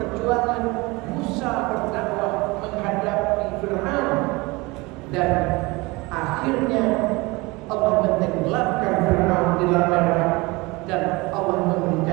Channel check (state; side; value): quieter; left; 23.8 dB